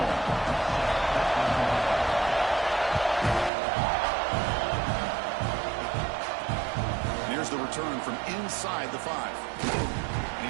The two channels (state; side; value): drops out; left; at 3.5 s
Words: Here's the return from inside the 5. And